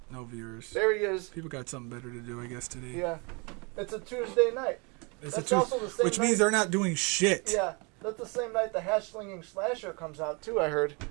No viewers. There he is. People got something better to do, I guess, today. Yeah, it's a Tuesday night. Which means they're not doing shit. Yeah, that's the same night the Hash Slinging Slasher comes out too. I heard.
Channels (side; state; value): left; quieter; 30.8 dB